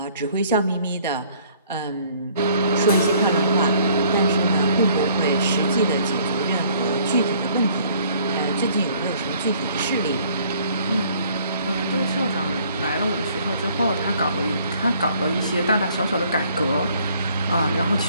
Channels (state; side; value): inverted; both; correlation -0.60